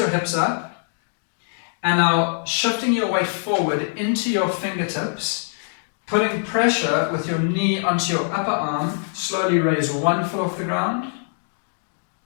hips up. And now shifting your weight forward into your fingertips, putting pressure with your knee onto your upper arm, slowly raise one foot off the ground.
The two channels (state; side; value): silent; right; digital silence